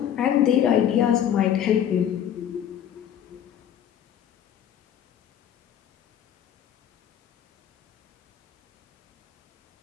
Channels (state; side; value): quieter; right; 9.9 dB